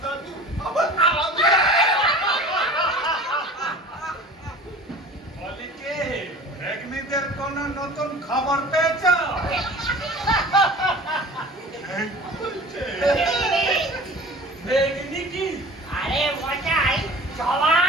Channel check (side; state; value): both; normal; correlation 0.41